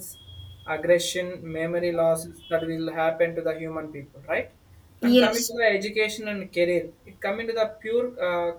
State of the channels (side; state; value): both; identical; correlation 1.00